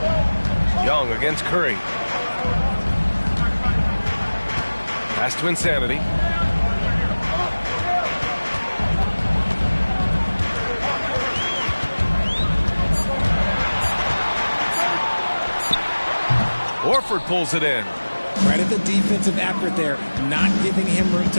Young against Curry. Pass to Insanity. Horford pulls it in. Right at the defensive effort there, not giving him room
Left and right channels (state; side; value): inverted; both; correlation -1.00